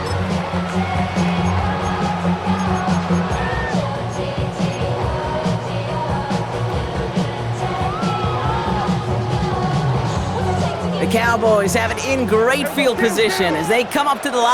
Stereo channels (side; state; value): both; identical; correlation 1.00